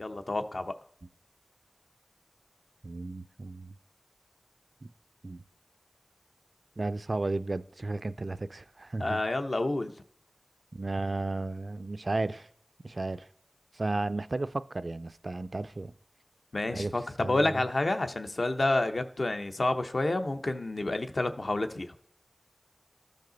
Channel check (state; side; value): normal; both; correlation 0.97